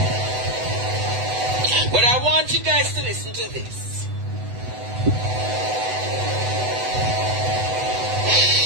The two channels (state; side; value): late; left; 8.0 ms